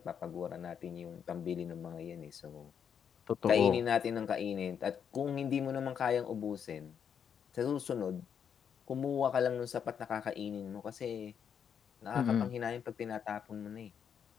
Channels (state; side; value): quieter; right; 7.8 dB